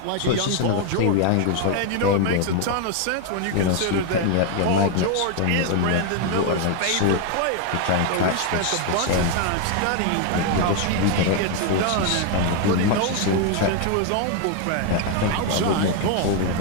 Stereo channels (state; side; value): different; both; correlation 0.01